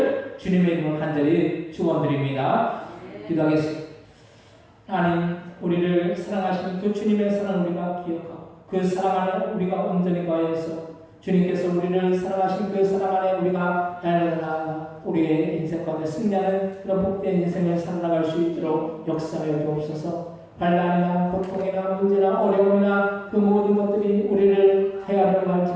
주님의 이름으로 간절히 축원드립니다. 기도하겠습니다. 하나님, 우리를 사랑하시는 그 주님의 사랑을 우리가 기억하고 그 사랑 안에 우리가 온전히 거해서 주님께서 우리를 사랑하신 그 사랑 안에 우리가 날마다 우리의 인생 가운데 승리하는 그런 복된 인생을 살아나갈 수 있도록 역사하여 주옵소서. 반란이나 고통이나 문제나 어려움이나 그 모든 것들이 우리를 해야 하려고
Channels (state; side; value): identical; both; correlation 1.00